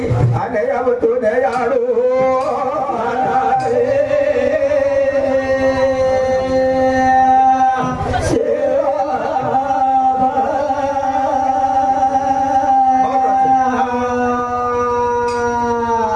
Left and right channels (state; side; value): identical; both; correlation 1.00